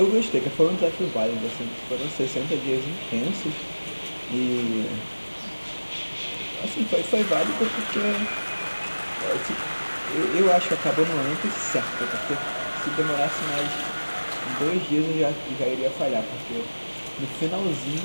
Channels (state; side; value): inverted; both; correlation -1.00